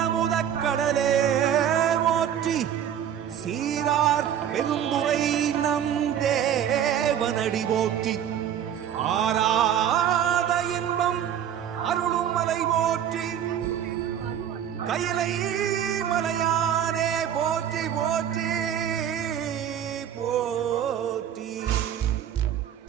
முதக்கடலே போற்றி சீரார் பெருந்துரை நம் தேவனடி போற்றி ஆராத இன்பம் அருளும் மலை போற்றி கையிலை மலையானே போற்றி போற்றி போற்றி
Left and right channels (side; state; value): left; quieter; 9.6 dB